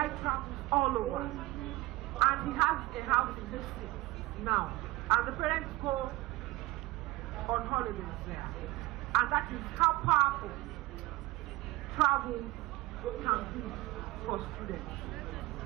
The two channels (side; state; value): left; quieter; 19.6 dB